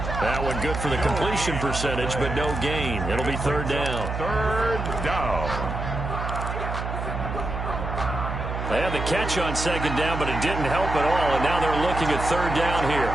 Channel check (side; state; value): right; noise; hum, 5 dB below the sound